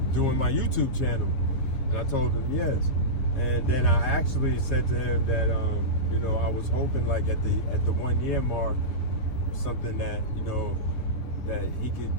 doing my YouTube channel, and I told him yes. And then I actually said to him that you know, I was hoping like at the 1 year mark, something that, you know, that he could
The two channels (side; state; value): right; late; 7.8 ms